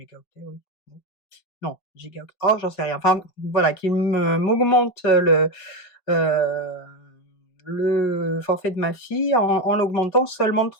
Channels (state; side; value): late; right; 5.5 ms